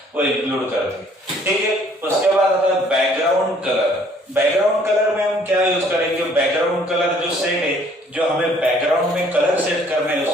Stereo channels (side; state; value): both; normal; correlation 0.60